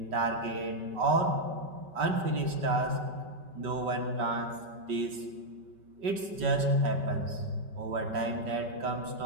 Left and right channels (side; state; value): left; late; 5.2 ms